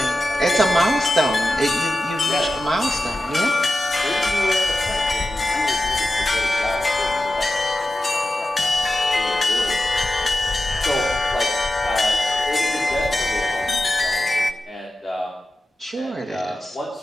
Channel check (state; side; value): normal; both; correlation 0.93